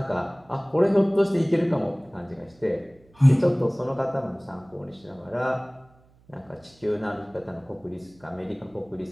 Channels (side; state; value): right; noise; hum, 30 dB below the sound